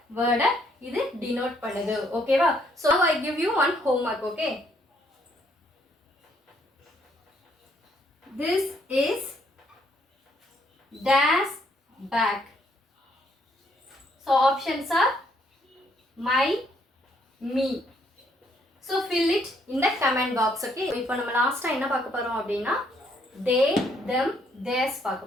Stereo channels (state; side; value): normal; both; correlation 0.69